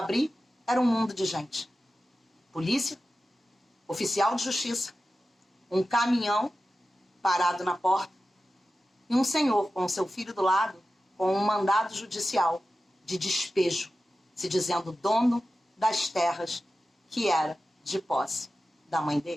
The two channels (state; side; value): normal; both; correlation 0.93